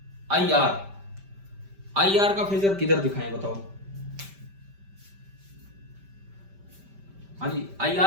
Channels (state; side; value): late; left; 5.1 ms